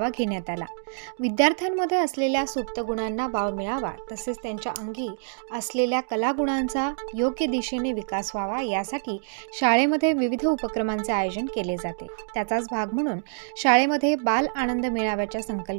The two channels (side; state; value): left; silent; digital silence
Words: घेण्यात आला। विद्यार्थ्यांमध्ये असलेल्या सुप्त गुणांना वाव मिळावा, तसेच त्यांच्या अंगी असलेल्या कलागुणांचा योग्य दिशेने विकास व्हावा यासाठी शाळेमध्ये विविध उपक्रमांचे आयोजन केले जाते। त्याचाच भाग म्हणून शाळेमध्ये बाल आनंद मेळाव्याच्या